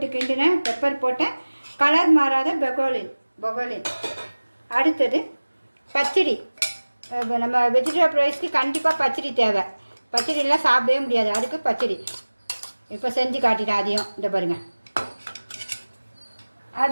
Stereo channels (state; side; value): inverted; both; correlation -1.00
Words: கிண்டினேன், பெப்பர் போட்டேன், கலர் மாறாத பெக்கோலின். அடுத்தது பச்சடி. நம்ம வெஜிடபிள் ரைஸ்க்கு கண்டிப்பாக பச்சடி தேவை. பச்சடிலாம் சாப்பிடவே முடியாது, அதுக்கு பச்சடி இப்போ செஞ்சு காட்டிட்டேன். அதையும் இந்த பாருங்கள்,